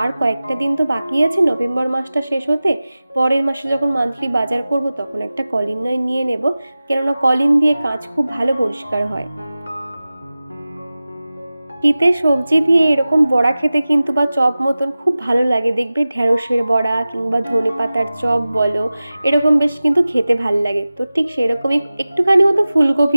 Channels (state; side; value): inverted; both; correlation -0.96